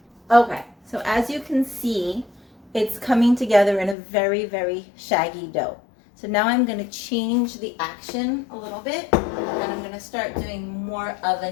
Okay, so as you can see, it's coming together in a very, very shaggy dough. So now I'm going to change the action a little bit, and I'm going to start doing more of a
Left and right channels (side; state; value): right; drops out; at 4.0 s